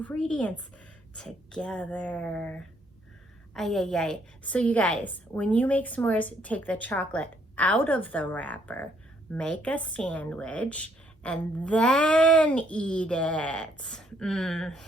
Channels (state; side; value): normal; both; correlation 0.69